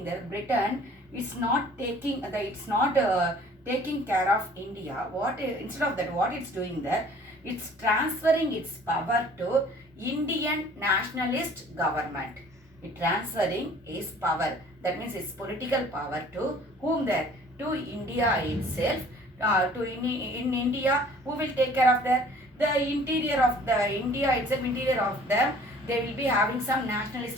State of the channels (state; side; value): normal; both; correlation 0.52